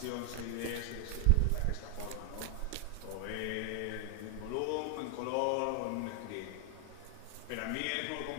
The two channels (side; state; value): both; different; correlation 0.00